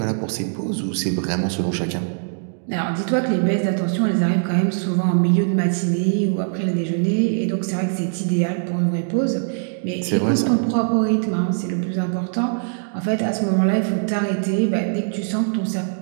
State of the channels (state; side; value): silent; left; digital silence